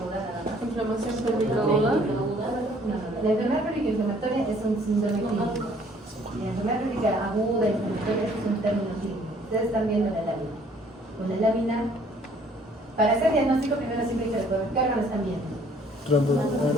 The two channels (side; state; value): both; normal; correlation 0.59